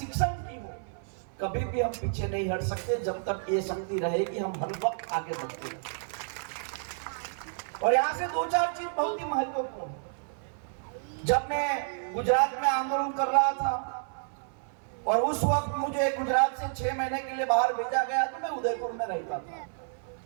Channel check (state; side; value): silent; left; 58 dB below the other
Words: की हो, कभी भी हम पीछे नहीं हट सकते जब तक ये शक्ति रहेगी। हम हर वक्त आगे बढ़ते हैं। और यहां से दो चार चीज बहुत ही महत्वपूर्ण है। जब मैं गुजरात में आंदोलन कर रहा था और उस वक्त मुझे गुजरात से 6 महीने के लिए बाहर भेजा गया, तो मैं उदयपुर में रहता था।